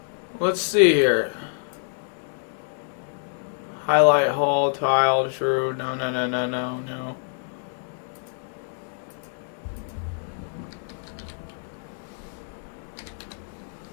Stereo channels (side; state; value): right; silent; 61 dB below the other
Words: Let's see here. Highlight hall, tile, true. No, no, no, no, no, no.